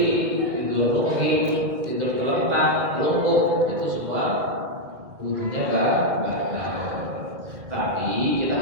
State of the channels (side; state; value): left; late; 1.8 ms